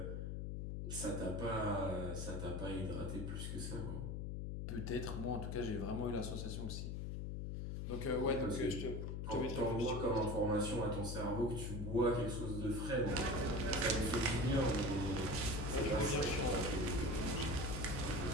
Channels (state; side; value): noise; left; hum, 3 dB below the sound